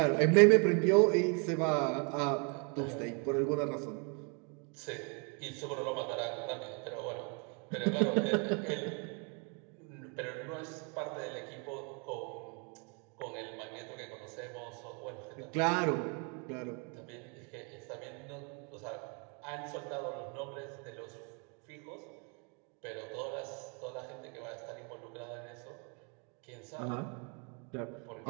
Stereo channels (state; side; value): quieter; left; 35.4 dB